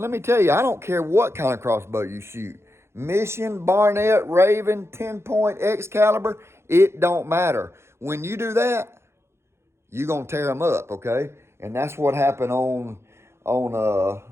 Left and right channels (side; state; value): left; late; 0.13 ms